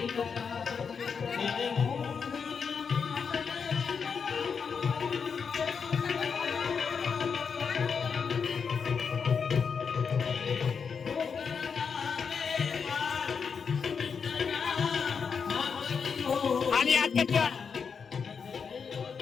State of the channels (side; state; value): right; quieter; 6.1 dB